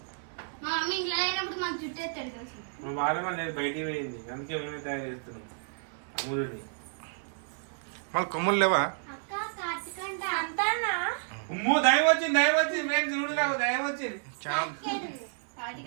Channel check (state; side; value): silent; left; digital silence